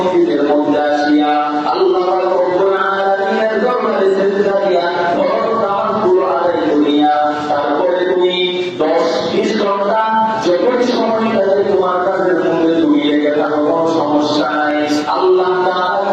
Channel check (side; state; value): both; identical; correlation 1.00